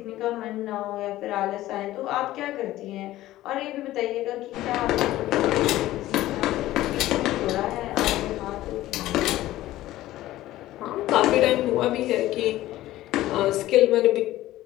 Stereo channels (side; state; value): right; quieter; 15.5 dB